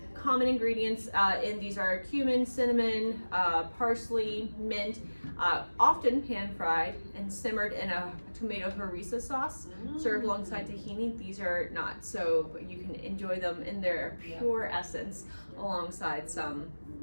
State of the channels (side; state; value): both; inverted; correlation -1.00